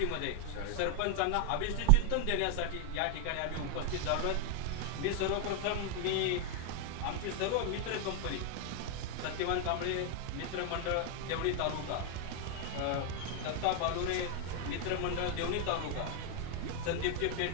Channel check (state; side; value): different; both; correlation 0.00